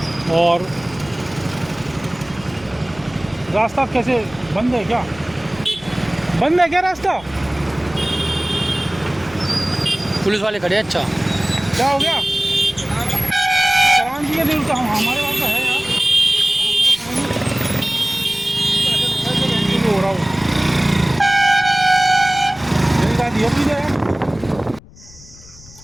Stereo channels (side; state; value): left; noise; rumble, 22 dB below the sound